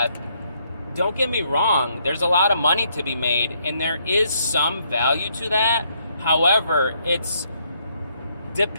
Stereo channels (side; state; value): both; inverted; correlation -0.72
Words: don't get me wrong, there's a lot of money to be made, and there is some value to that. However, it's